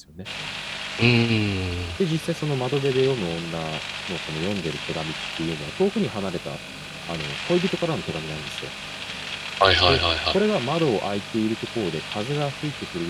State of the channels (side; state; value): both; identical; correlation 1.00